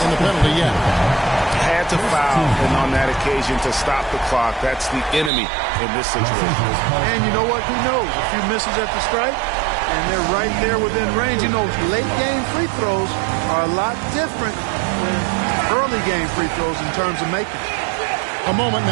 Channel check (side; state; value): left; drops out; at 5.3 s